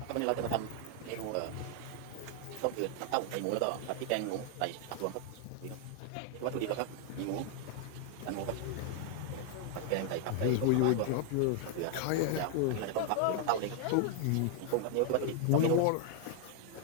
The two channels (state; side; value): different; both; correlation 0.00